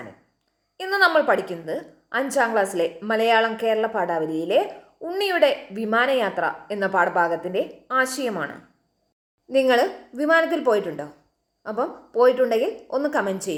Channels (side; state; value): both; identical; correlation 1.00